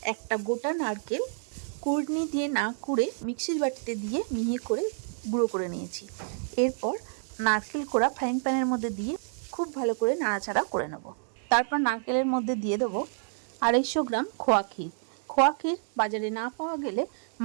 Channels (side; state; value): left; silent; digital silence